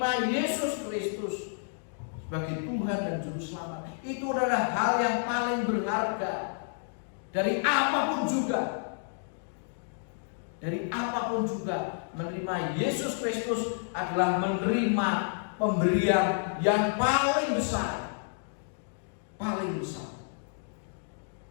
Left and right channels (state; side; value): silent; right; digital silence